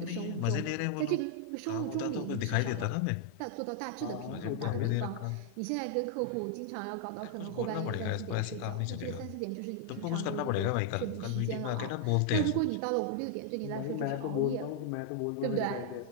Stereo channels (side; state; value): both; different; correlation 0.00